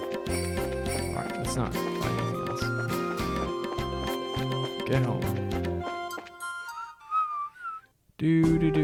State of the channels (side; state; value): both; identical; correlation 1.00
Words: let's not fight anything else. Get home. Do.